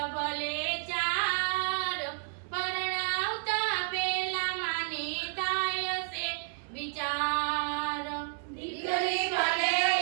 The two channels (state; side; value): silent; left; 57 dB below the other